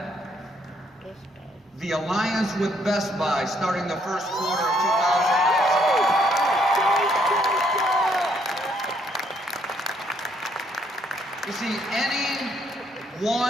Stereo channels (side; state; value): both; normal; correlation 0.69